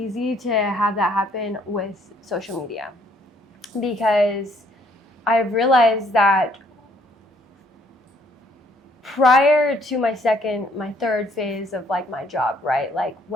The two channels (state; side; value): normal; both; correlation 0.65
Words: to have that happen with social media, because I've realized that prior to my third phase of like my job, right? Like